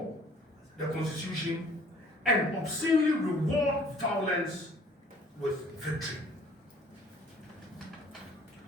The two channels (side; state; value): both; normal; correlation 0.56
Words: the Constitution, and obscenely reward violence with victory.